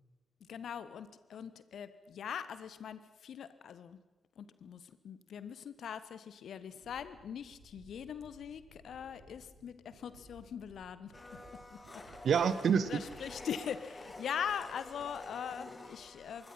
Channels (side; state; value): both; normal; correlation 0.71